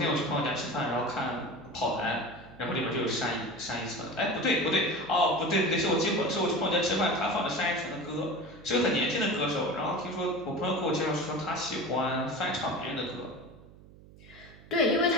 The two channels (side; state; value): right; noise; hum, 21 dB below the sound